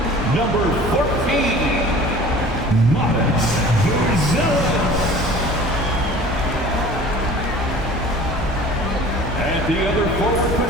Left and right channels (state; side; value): normal; both; correlation 0.44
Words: number 14, Matas Buzelis. At the other forward